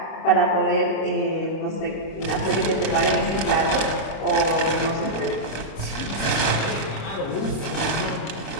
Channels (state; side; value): late; right; 26 ms